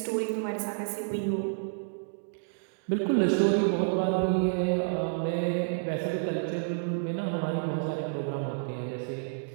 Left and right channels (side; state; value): left; silent; digital silence